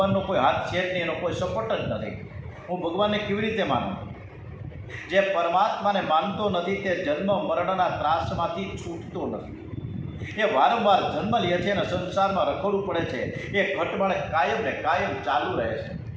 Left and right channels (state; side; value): identical; both; correlation 1.00